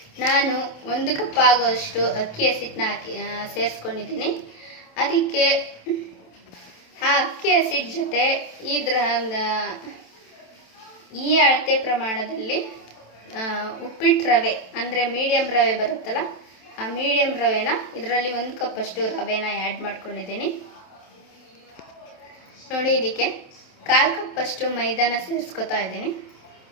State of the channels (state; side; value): late; right; 27 ms